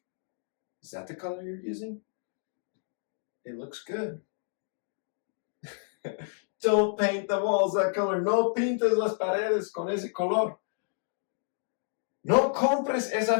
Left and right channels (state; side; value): silent; right; digital silence